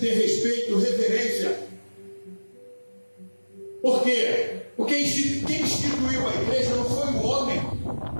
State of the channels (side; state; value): both; inverted; correlation -1.00